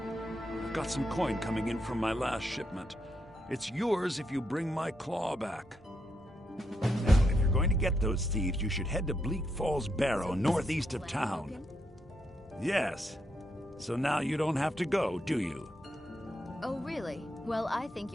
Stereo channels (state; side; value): normal; both; correlation 0.80